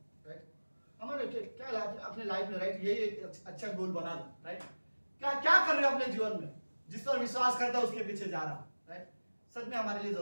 राइट। हमारे क्या अपने लाइफ में, राइट, यही एक अच्छा गोल बना दो, राइट। क्या क्या कर रहे हो अपने जीवन में, जिस पर विश्वास करता है उसके पीछे जा रहा, राइट। सच में हमारे लिए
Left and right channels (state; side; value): inverted; both; correlation -1.00